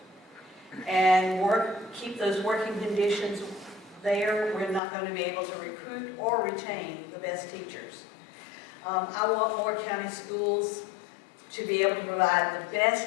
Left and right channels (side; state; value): right; drops out; at 4.8 s